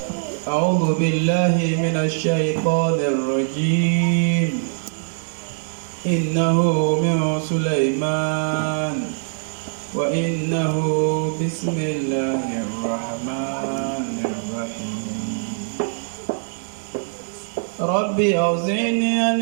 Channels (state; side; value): silent; left; digital silence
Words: أعوذ بالله من الشيطان الرجيم. إنه من سليمان وإنه بسم الله الرحمن الرحيم. ربي أوزعني أن